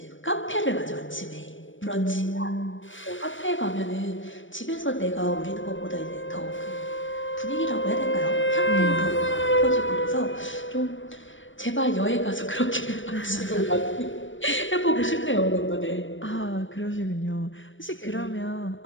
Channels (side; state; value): right; late; 0.56 ms